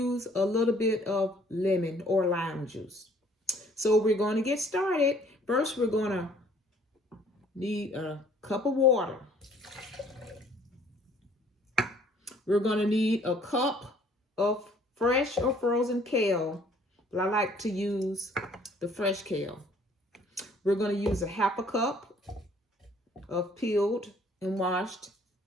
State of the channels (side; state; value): both; normal; correlation 0.58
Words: a little bit of lemon or lime juice. So we're going to get started. First, we're going to need a cup of water. We're going to need a cup of fresh or frozen kale, but I like to use the fresh kale. We're going to use a half a cup of peeled and washed